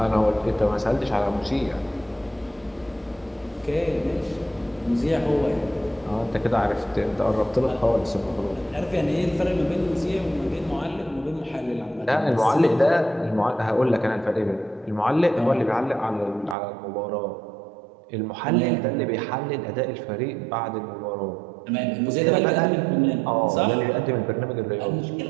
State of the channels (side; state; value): left; drops out; at 16.6 s